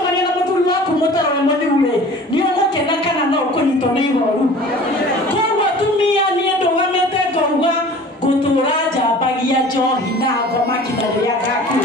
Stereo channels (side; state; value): both; normal; correlation 0.44